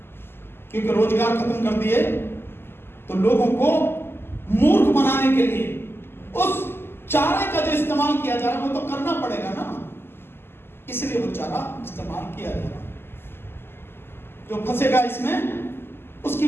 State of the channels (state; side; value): late; right; 0.11 ms